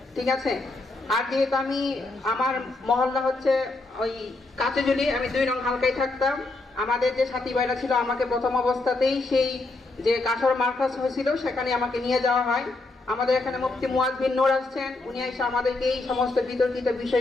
ঠিক আছে। আর যেহেতু আমি আমার মহল্লা হচ্ছে ওই কাচেজুলি, আমি 2 নং হালকায় থাকতাম। আমাদের যে সাথী ভাইরা ছিল আমাকে প্রথম অবস্থাতেই সেই যে কাসর মার্কাজ হয়েছিল সেখানে আমাকে নিয়ে যাওয়া হয়। আমাদের এখানে মুফতি মুয়াজ বিন নূর আসছেন, উনি এসে আমাদেরকে এই সমস্ত বিতর্কিত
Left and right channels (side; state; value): right; quieter; 3.2 dB